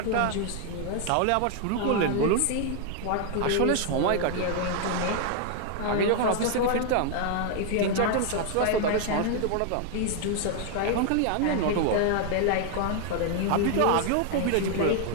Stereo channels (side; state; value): both; different; correlation 0.00